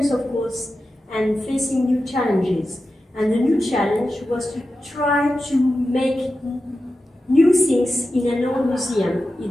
of course, and facing new challenges. And the new challenge was to try to make new things in an old museum.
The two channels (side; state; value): both; normal; correlation 0.92